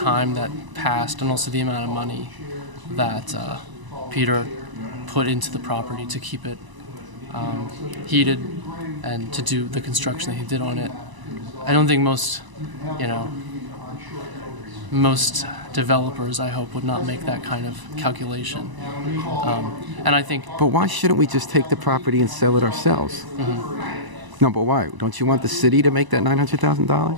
that passed and also the amount of money that Peter put into the property to keep it heated and to do the construction that he did on it, I don't think most developers, I hope, would not make that kind of calculation. And I think... But why shouldn't we just take the property and sell it ourselves? No, but why? Don't you want the city to make that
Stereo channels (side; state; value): left; late; 1.0 ms